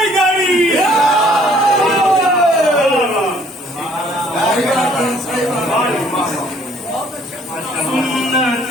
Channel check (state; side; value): normal; both; correlation 0.59